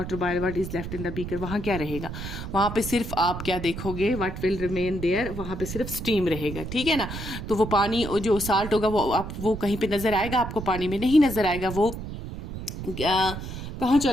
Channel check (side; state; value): right; noise; rumble, 8 dB below the sound